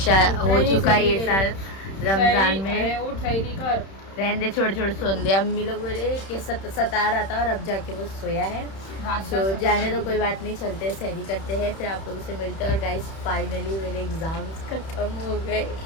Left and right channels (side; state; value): right; late; 31 ms